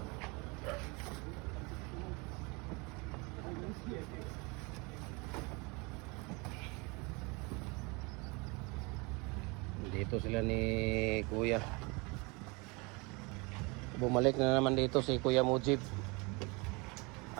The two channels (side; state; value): left; quieter; 28.1 dB